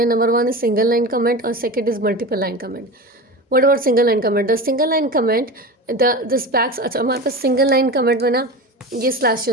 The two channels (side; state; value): both; normal; correlation 0.28